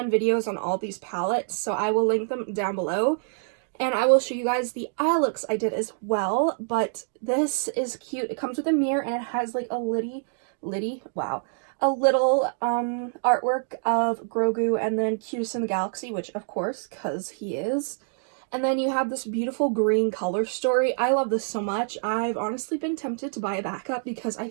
videos on all these palettes, so I will link them down below. And I will show you guys the eye looks I did as well, but this is cute. It comes with a mirror, and it has like a little artwork of Grogu and then Cutest in the Galaxy, which of course, because he is. And then you have this beautiful green color story. I love this so much. I've honestly been tempted to buy a backup because I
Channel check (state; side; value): silent; left; digital silence